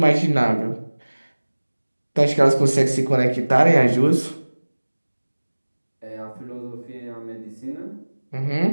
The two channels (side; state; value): both; inverted; correlation -1.00